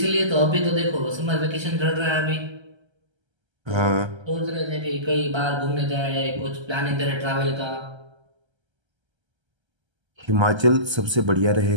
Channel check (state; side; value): late; left; 1.3 ms